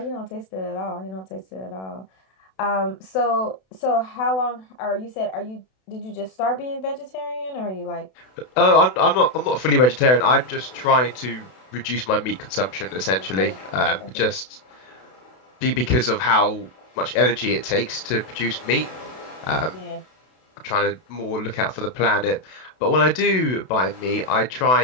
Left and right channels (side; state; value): right; late; 32 ms